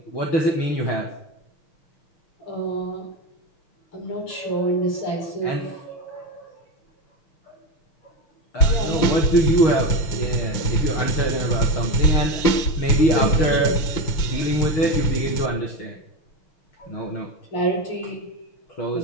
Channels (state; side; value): late; right; 5.9 ms